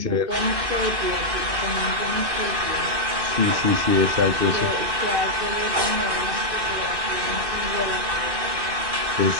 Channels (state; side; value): late; left; 2.6 ms